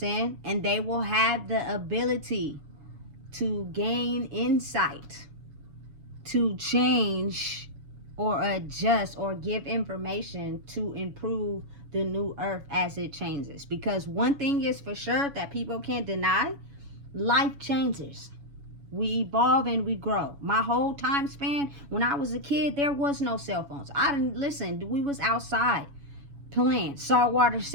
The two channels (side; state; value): left; late; 7.1 ms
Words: And they will have the ability to gain insight, to change or adjust or give information to improve the new earth as it changes. Because one thing is for sure that people can't deny, life changes. We evolve and we grow. My whole time span, when I was a kid, there was no cell phones. I didn't listen. We was outside playing saltwater